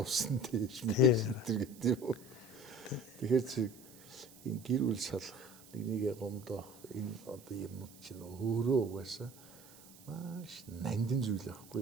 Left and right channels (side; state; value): right; noise; hiss, 21 dB below the sound